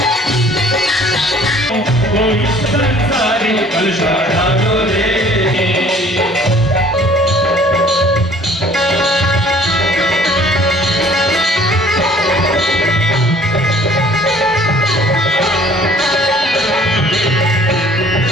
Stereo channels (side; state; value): both; normal; correlation 0.54